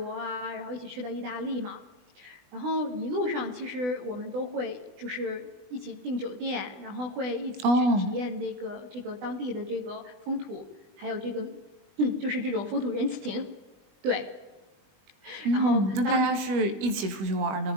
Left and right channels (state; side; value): late; left; 21 ms